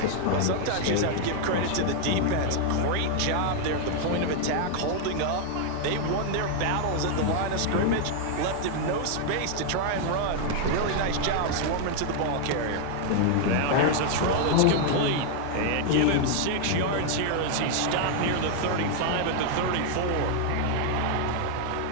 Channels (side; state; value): both; different; correlation 0.00